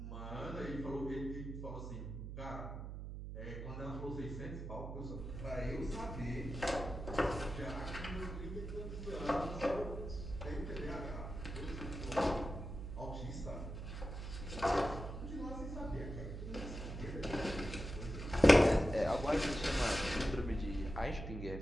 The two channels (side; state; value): right; noise; hum, 7 dB below the sound